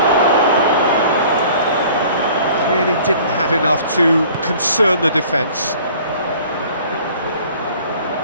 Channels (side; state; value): both; inverted; correlation -0.50